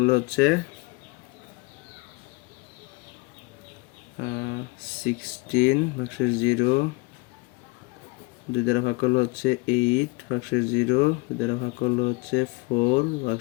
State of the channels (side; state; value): right; quieter; 26.9 dB